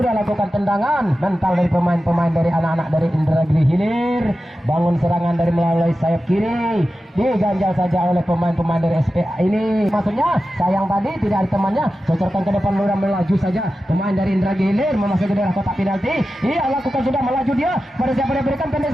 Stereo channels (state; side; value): normal; both; correlation 0.93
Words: lakukan tendangan mental dari pemain-pemain dari anak-anak dari Indragiri Hilir. Bangun serangan dari melalui sayap kiri, diganjal saja oleh pemain-pemain dari SPA ini. Maksudnya sayang tadi tidak ada temannya, cocorkan ke depan, ludah melaju saja pemain dari Indragiri Hilir memasuki daerah kotak penalti. Iya, lakukan, sudah melaju dia, pada siapa dia berikan,